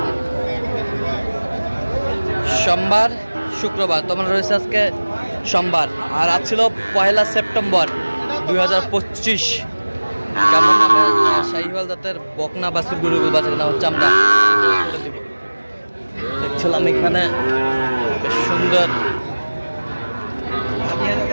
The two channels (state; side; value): inverted; both; correlation -1.00